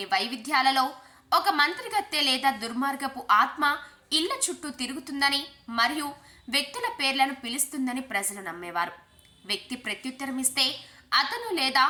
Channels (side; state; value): both; identical; correlation 1.00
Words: వైవిధ్యాలలో ఒక మంత్రగత్తె లేదా దుర్మార్గపు ఆత్మ ఇళ్ల చుట్టూ తిరుగుతుందని మరియు వ్యక్తుల పేర్లను పిలుస్తుందని ప్రజలు నమ్మేవారు. వ్యక్తి ప్రత్యుత్తరం ఇస్తే అతను లేదా